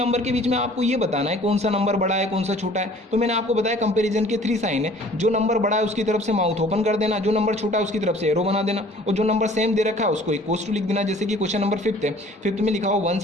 के बीच में आपको ये बताना है कौन सा नंबर बड़ा है कौन सा छोटा है। तो मैंने आपको बताया कंपैरिजन के 3 साइन है, जो नंबर बड़ा है उसकी तरफ से माउथ ओपन कर देना, जो नंबर छोटा है उसकी तरफ से एरो बना देना, और जो नंबर सेम दे रखा है उसको इक्वल्स टू लिख देना। जैसे कि क्वेश्चन नंबर 5th है, 5th में लिखा हो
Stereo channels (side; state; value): both; normal; correlation 0.52